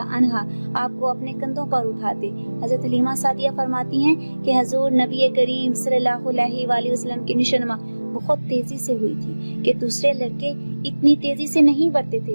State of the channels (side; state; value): both; inverted; correlation -1.00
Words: عنہ آپ کو اپنے کندھوں پر اٹھاتے۔ حضرت حلیمہ سعدیہ فرماتی ہیں کہ حضور نبی کریم صلی اللہ علیہ وآلہ وسلم کی نشوونما بہت تیزی سے ہوئی تھی کہ دوسرے لڑکے اتنی تیزی سے نہیں بڑھتے تھے۔